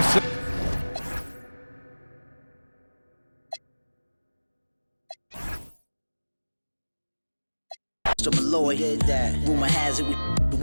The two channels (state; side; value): inverted; both; correlation -1.00